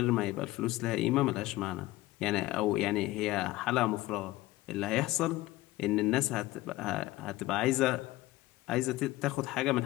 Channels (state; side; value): quieter; right; 18.0 dB